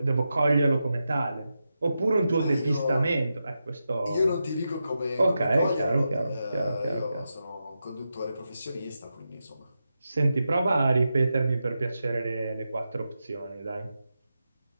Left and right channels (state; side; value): inverted; both; correlation -0.89